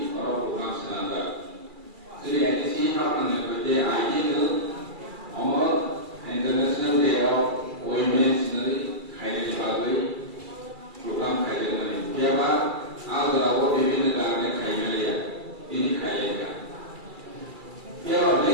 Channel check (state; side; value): late; left; 2.3 ms